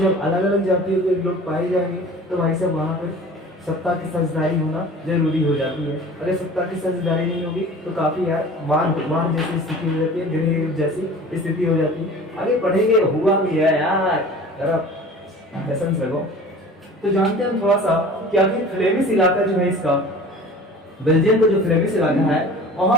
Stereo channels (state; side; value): normal; both; correlation 0.42